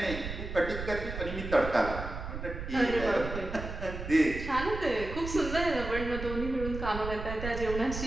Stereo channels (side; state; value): right; noise; rumble, 7 dB below the sound